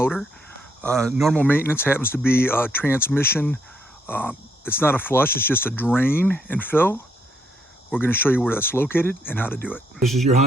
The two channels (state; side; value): normal; both; correlation 0.73